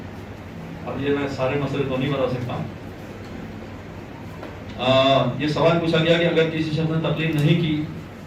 اب یہ میں سارے مسئلے تو نہیں بتا سکتا. یہ سوال پوچھا گیا کہ اگر کسی شخص نے تقلید نہیں کی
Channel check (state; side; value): identical; both; correlation 1.00